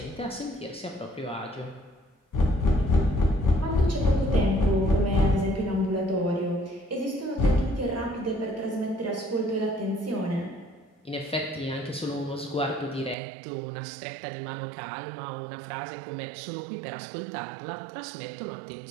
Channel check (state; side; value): drops out; left; at 13.2 s